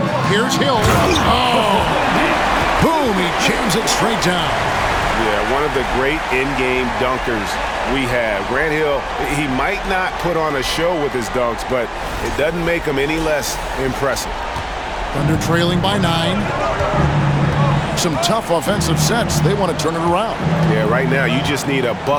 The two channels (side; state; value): both; identical; correlation 1.00